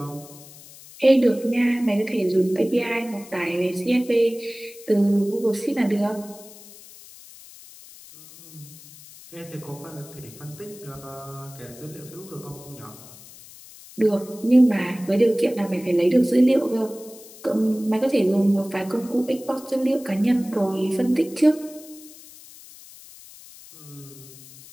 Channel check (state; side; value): noise; left; hiss, 19 dB below the sound